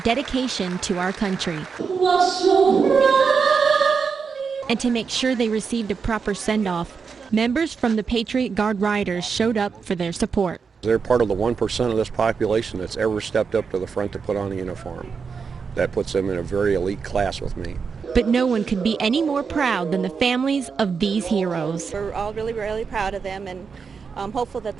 to our country. And to make sure they received a proper send-off, members from the Patriot Guard Riders showed up for their support. They're part of the 1% of this population that's ever stepped up to the front to put on a uniform. That puts them in a very elite class with me. But no one could be any more proud than the families of these heroes. We're all really, really proud of them, and I'm hopeful that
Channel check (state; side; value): quieter; left; 5.6 dB